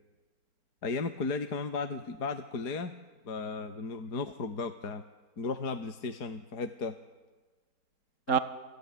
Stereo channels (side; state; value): right; late; 4.4 ms